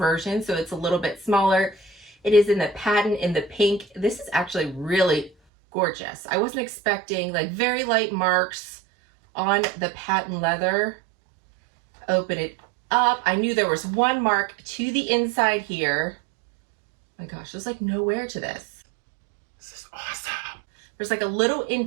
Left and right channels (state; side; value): drops out; left; at 5.3 s